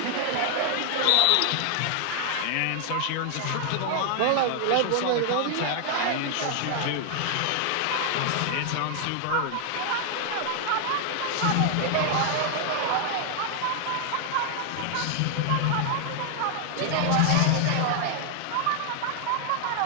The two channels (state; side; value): different; both; correlation 0.00